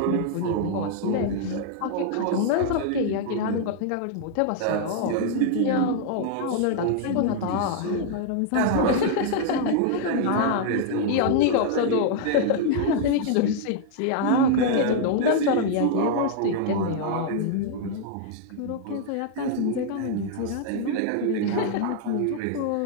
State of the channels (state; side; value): different; both; correlation -0.01